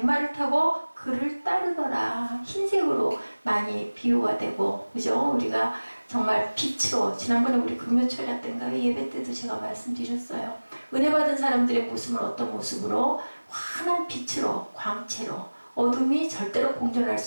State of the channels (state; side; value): inverted; both; correlation -1.00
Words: 타고 그를 따르더라. 흰색으로 많이 비유가 되고, 그죠? 우리가 정말 빛으로, 지난번에 우리 금요철야 때인가 예배 때도 제가 말씀드렸어요. 은혜 받은 사람들의 모습은 어떤 모습으로? 환한 빛으로, 광채로, 어둠이 절대로 공존할